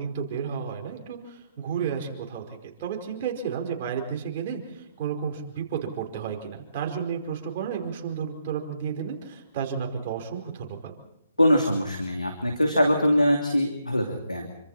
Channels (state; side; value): inverted; both; correlation -0.76